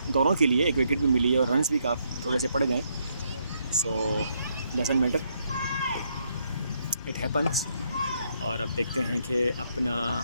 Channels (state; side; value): inverted; both; correlation -0.75